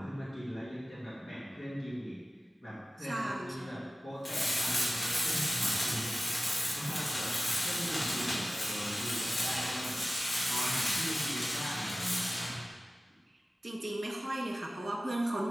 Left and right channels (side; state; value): both; normal; correlation 0.96